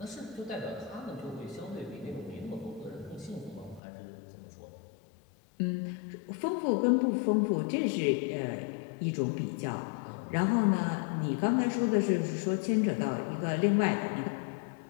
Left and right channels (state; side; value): drops out; right; at 3.8 s